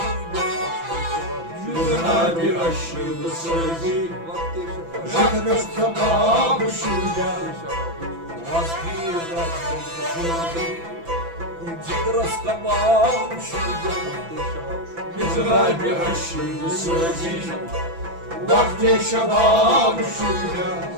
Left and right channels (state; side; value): late; left; 6.0 ms